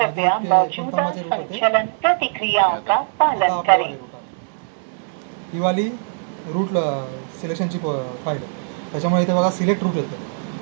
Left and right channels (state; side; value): silent; left; digital silence